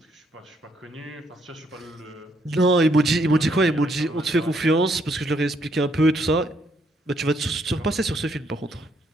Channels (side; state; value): both; normal; correlation 0.72